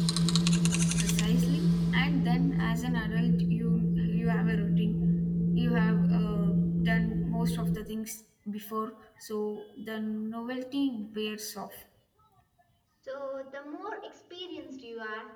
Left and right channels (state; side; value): identical; both; correlation 1.00